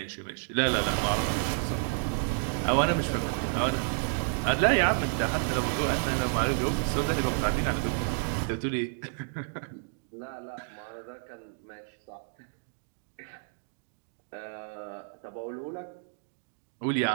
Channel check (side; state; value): left; silent; digital silence